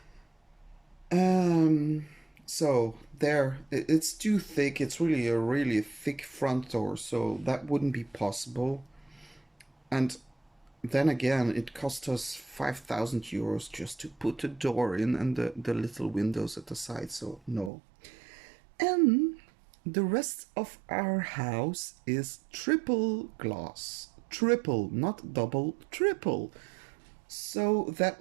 Um, so there, it's too thick. It's really a really thick front door, so that wouldn't be possible. And then again, it cost us 5,000 euros just to put the door in and the little windows at the side, so no. And the rest of our house is triple glass. Triple, not double, triple. So that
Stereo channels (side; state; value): left; drops out; at 17.7 s